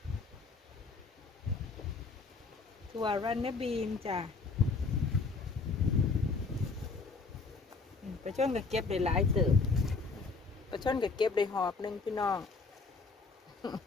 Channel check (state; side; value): quieter; right; 4.2 dB